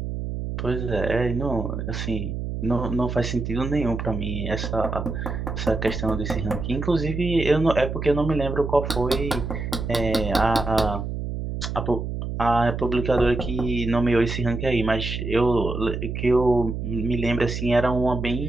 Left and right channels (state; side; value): noise; right; hum, 4 dB below the sound